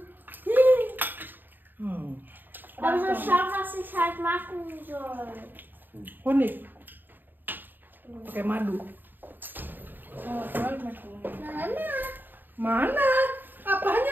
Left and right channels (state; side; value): late; left; 0.092 ms